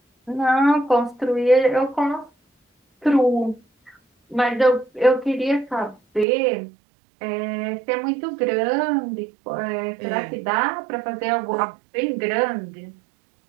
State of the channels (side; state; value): left; drops out; at 6.2 s